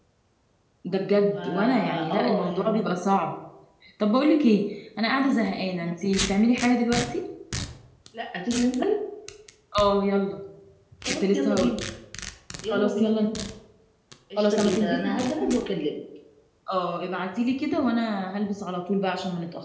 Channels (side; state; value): both; identical; correlation 1.00